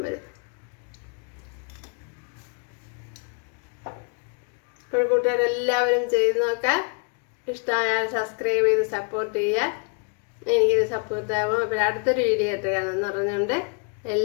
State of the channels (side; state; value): right; quieter; 36.0 dB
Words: വരും. ഇപ്പോൾ കൂട്ടുകാരെല്ലാവരും ചെയ്ത് നോക്കാം. ഇഷ്ടമായാൽ സബ്സ്ക്രൈബ് ചെയ്ത് സപ്പോർട്ട് ചെയ്യുക. എനിക്കിത് സപ്പോർട്ട് ആവും. അപ്പോൾ അടുത്തൊരു വീഡിയോ ആയിട്ട് കാണുമെന്ന് പറഞ്ഞുകൊണ്ട്